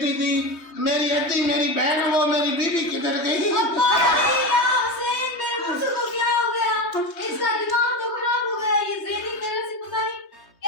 थी, मेरी अद्दी मेरी बहन, वो मेरी बीबी किधर गई? अब्बा या हुसैन, मेरे मुझसे को क्या हो गया? इसका दिमाग तो खराब हो गया। ये ज़ेनी मेरे से पता नहीं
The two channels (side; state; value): right; late; 3.2 ms